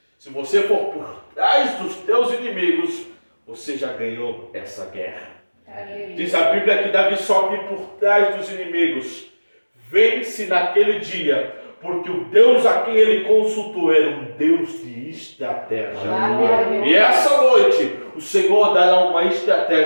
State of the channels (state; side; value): inverted; both; correlation -1.00